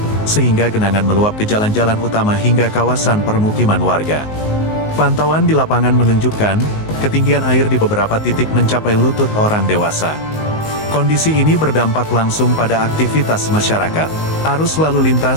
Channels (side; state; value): right; late; 19 ms